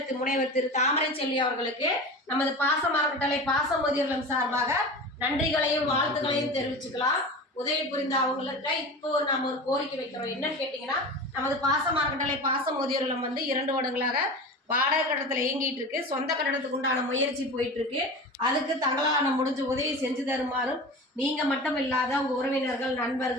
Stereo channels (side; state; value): both; normal; correlation 0.32